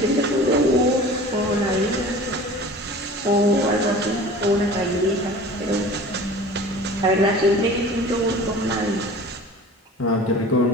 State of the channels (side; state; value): both; normal; correlation 0.41